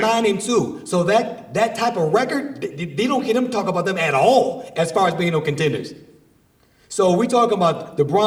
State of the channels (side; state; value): both; identical; correlation 1.00